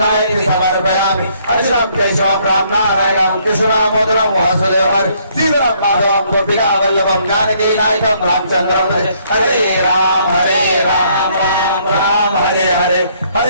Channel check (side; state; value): both; inverted; correlation -0.67